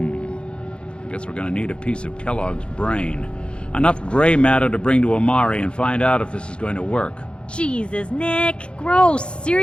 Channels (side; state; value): right; late; 0.056 ms